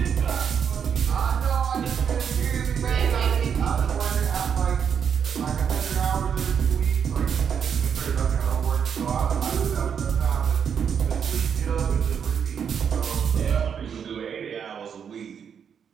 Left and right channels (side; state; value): left; quieter; 7.5 dB